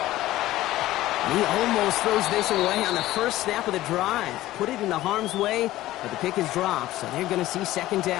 He almost throws this away on the first snap of the drive. Put it into harm's way, but the pick is dropped, so they're going to see 2nd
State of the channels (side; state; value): right; quieter; 15.7 dB